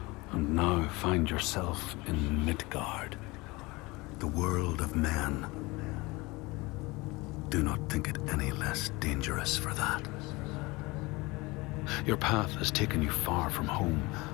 and now find yourself in Midgard, the world of men. Do not think it any less dangerous for that. Your path has taken you far from home,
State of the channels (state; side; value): quieter; right; 23.3 dB